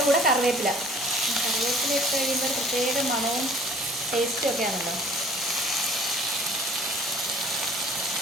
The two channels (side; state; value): both; normal; correlation 0.51